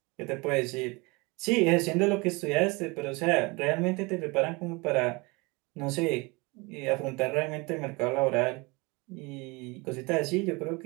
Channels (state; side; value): quieter; left; 26.3 dB